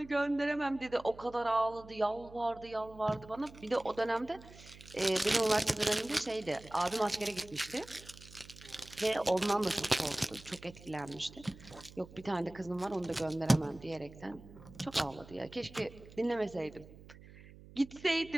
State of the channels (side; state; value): right; noise; hum, 19 dB below the sound